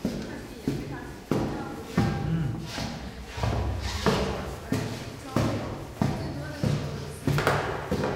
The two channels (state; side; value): identical; both; correlation 1.00